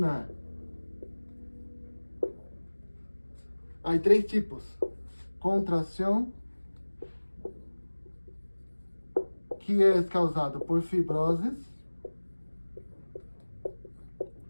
Há 3 tipos: contração, que é causado por fibroses,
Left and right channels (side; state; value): both; inverted; correlation -1.00